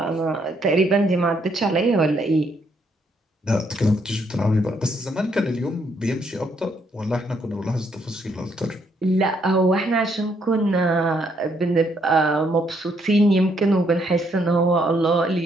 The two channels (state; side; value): normal; both; correlation 0.72